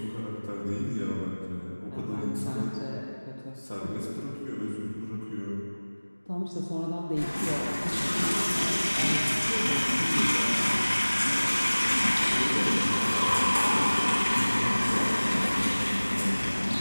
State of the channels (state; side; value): inverted; both; correlation -1.00